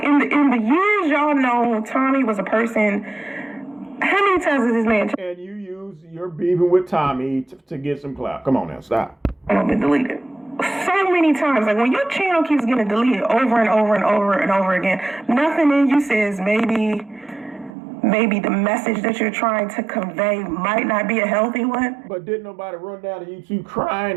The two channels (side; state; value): left; drops out; at 17.7 s